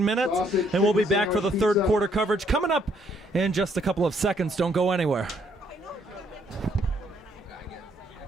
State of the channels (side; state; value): both; normal; correlation 0.69